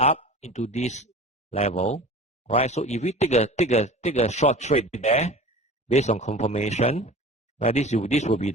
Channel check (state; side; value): normal; both; correlation 0.38